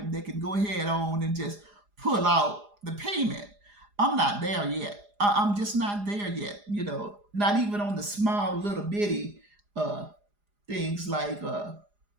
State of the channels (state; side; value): late; left; 4.9 ms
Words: they can go ahead on and just pull out the payment. I'm not there yet. I'm just not there yet. Not even on the small little bitty uh, things like